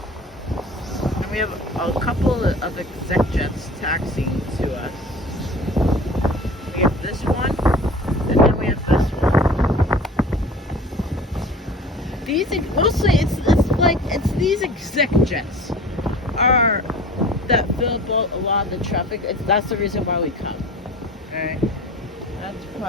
And we have a couple of exec jets taxiing to us. We have this one, and then we have this one. These mostly it's these exec jets are that fill up a lot of the traffic. That's the reason why we come. All right, that's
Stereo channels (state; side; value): normal; both; correlation 0.41